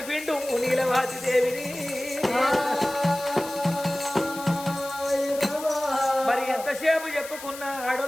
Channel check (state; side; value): noise; left; hiss, 13 dB below the sound